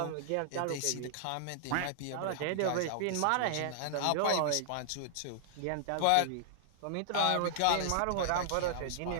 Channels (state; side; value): different; both; correlation -0.01